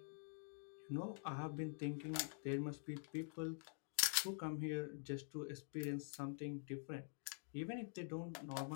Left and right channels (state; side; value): silent; right; digital silence